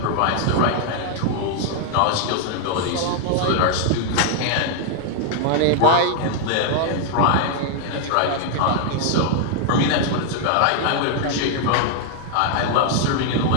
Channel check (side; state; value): both; different; correlation 0.00